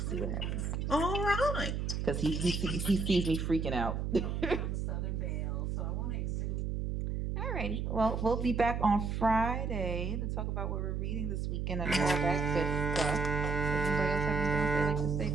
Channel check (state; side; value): noise; right; hum, 1 dB below the sound